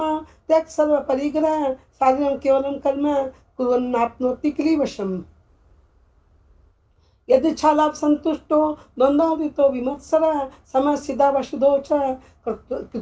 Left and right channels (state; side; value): identical; both; correlation 1.00